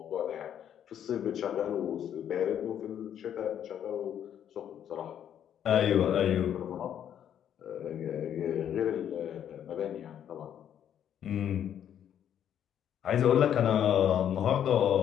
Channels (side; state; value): right; quieter; 9.7 dB